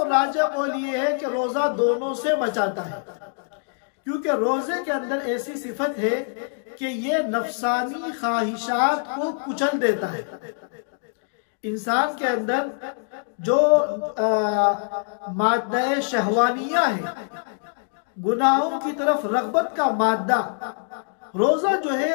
राजा कौल ये है कि रोजा दोनों से बचाता है, क्योंकि रोजे के अंदर ऐसी सिफत है कि ये नफसानी ख्वाहिशात को कुचल देता है। इंसान के अंदर जो मादा शहवानिया है, गुनाहों की तरफ रगबत का मादा, रोजा जो है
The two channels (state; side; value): silent; right; digital silence